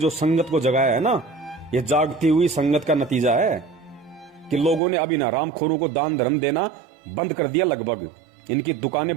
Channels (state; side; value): drops out; left; at 4.8 s